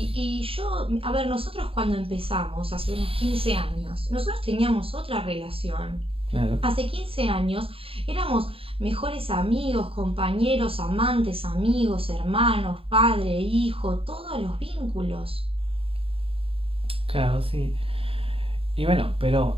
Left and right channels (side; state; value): left; late; 0.27 ms